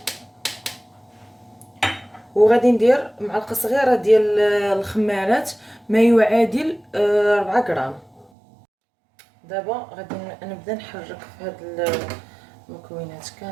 وغادي ندير معلقه صغيره ديال الخمارات ما يعادل 4 غرام. دابا غادي نبدا نحرك في هاد المكونات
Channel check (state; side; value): drops out; left; at 8.3 s